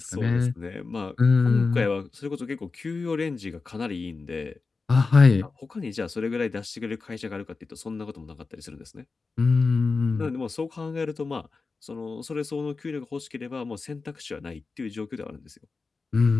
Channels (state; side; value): quieter; right; 4.2 dB